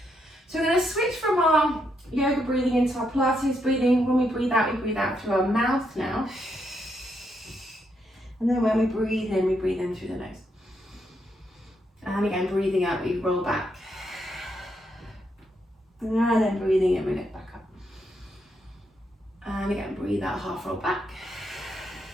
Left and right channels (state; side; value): normal; both; correlation 0.78